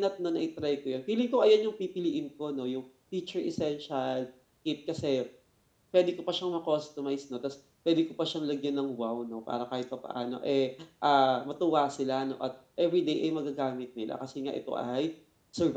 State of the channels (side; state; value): both; identical; correlation 1.00